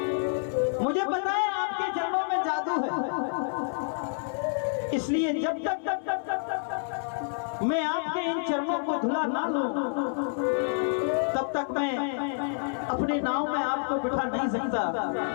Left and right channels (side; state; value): right; silent; 59 dB below the other